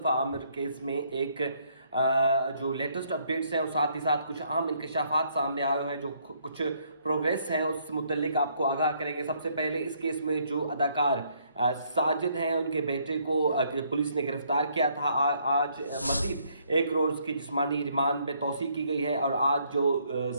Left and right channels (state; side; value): inverted; both; correlation -0.69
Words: आमिर केस में एक जो लेटेस्ट अपडेट्स हैं और साथ ही साथ कुछ अहम इंकशाफात सामने आए हुए हैं, जो कुछ प्रोग्रेस हैं उस मुतल्लिक आपको आगाह करेंगे। सबसे पहले इस केस में जो अदाकार साजिद हैं, उनके बेटे को पुलिस ने गिरफ्तार किया था। आज मज़ीद 1 रोज़ की जिस्मानी रिमांड में तौसी की गई है और आज जो